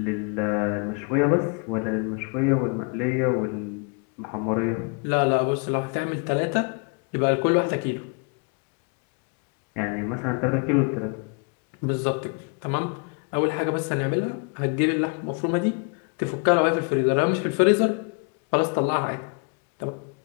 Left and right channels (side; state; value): right; quieter; 34.9 dB